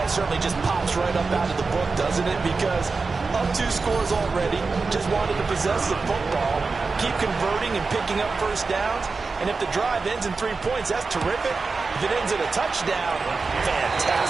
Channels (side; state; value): left; quieter; 4.3 dB